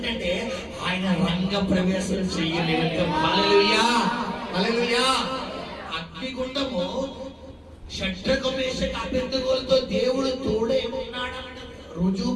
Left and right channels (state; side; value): identical; both; correlation 1.00